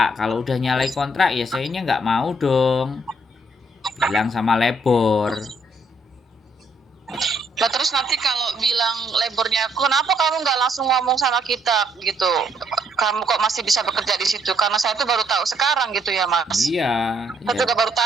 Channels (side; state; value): both; normal; correlation 0.70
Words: Kalau udah nyalai kontrak ya sayanya nggak mau dong. Bilang sama labor. Nah terus nanti kalau bilang labornya, kenapa kamu nggak langsung ngomong sama kita gitu? Kamu kok masih bisa bekerja di situ? Karena saya tuh baru tahu sekarang gitu ya Mas. Iya. Saya juga baru